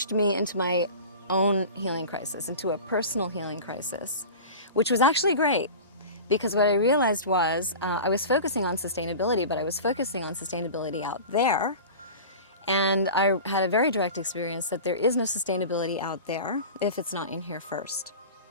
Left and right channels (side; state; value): both; inverted; correlation -0.34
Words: me into my own healing crisis, into a personal healing crisis, which was actually great. Because what I realized was I was focusing on sustainability, but I was focusing on sustainability out there. And I had a very direct experience that there is no sustainability out there if it's not in here first.